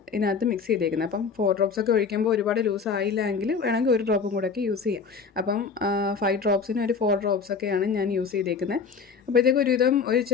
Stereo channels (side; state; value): right; quieter; 5.4 dB